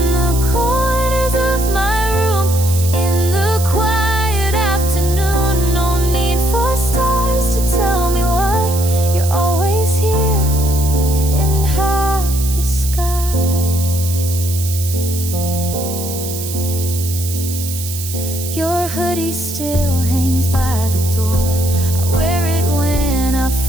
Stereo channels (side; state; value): right; noise; hiss, 8 dB below the sound